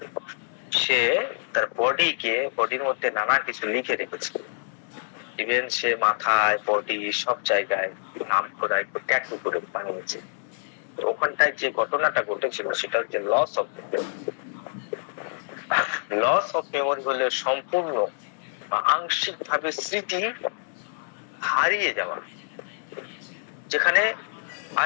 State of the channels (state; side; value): silent; right; digital silence